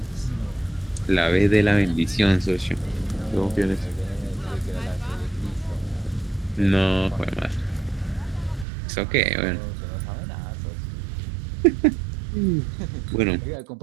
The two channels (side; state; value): left; drops out; at 8.7 s